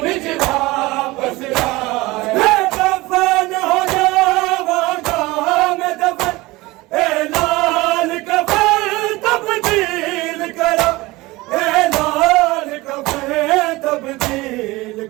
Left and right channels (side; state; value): left; quieter; 21.0 dB